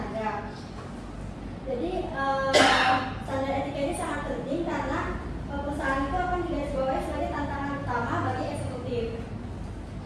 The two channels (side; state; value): both; identical; correlation 1.00